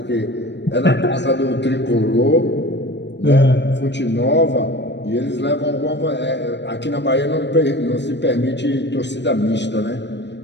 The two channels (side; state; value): right; late; 0.51 ms